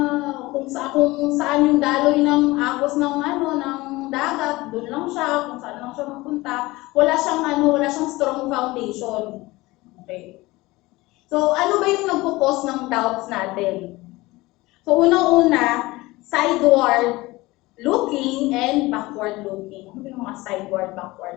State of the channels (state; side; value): quieter; right; 20.6 dB